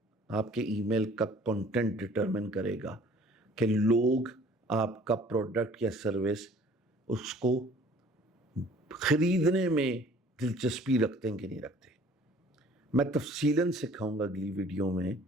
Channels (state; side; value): normal; both; correlation 0.53